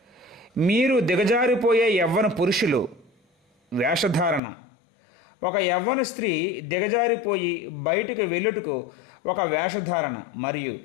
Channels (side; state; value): right; drops out; at 4.4 s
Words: మీరు దిగజారిపోయే యవ్వన పురుషులు. వేషధారణ. ఒక యవ్వన స్త్రీ దిగజారిపోయి బయటకు వెళ్ళుటకు ఒక వేషధారణ. మరియు